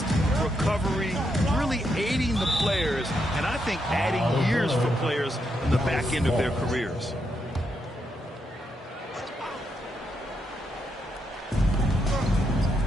recovery, really aiding the players, and I think adding years for players in the back end of their careers.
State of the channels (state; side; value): normal; both; correlation 0.80